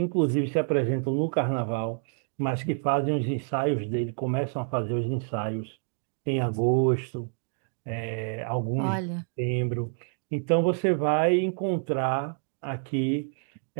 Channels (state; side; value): silent; left; 59 dB below the other